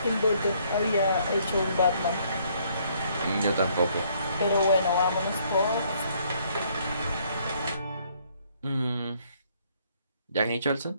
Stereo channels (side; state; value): both; inverted; correlation -0.66